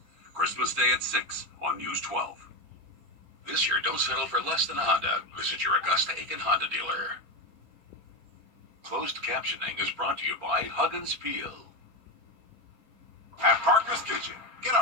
Christmas Day at 6 on News 12. This year, don't settle for less than a Honda. Visit your Augusta-Aiken Honda dealer. Closed captioning is brought to you by Hug and Spiel. At Parker's Kitchen, get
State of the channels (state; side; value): late; left; 4.4 ms